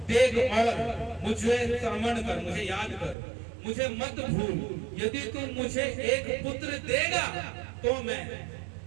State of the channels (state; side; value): drops out; left; at 3.2 s